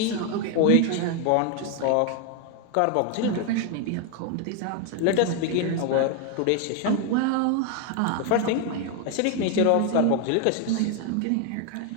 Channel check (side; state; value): both; different; correlation 0.01